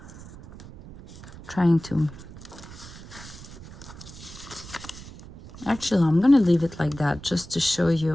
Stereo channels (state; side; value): noise; right; rumble, 16 dB below the sound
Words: trying to, actually I'm gonna leave it like that just to show